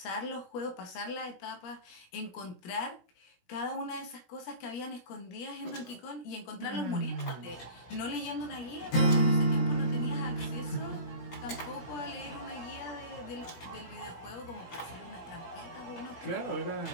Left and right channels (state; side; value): late; right; 17 ms